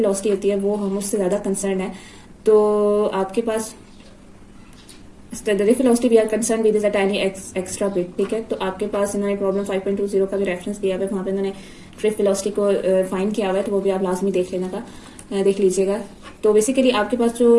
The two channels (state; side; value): identical; both; correlation 1.00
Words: होती है वो हम उससे ज़्यादा कंसर्न है। तो आपके पास drift velocity we are concern with is a tiny extra bit. ठीक है, तो आपके पास इन्होंने प्रॉब्लम 5.20 का भी रेफरेंस दिया है, वहाँ पे इन्होंने ड्रिफ्ट वेलोसिटी को फाइंड किया हुआ है, तो वो भी आप लाजमी देख लीजिएगा। तो बेसिकली आपके पास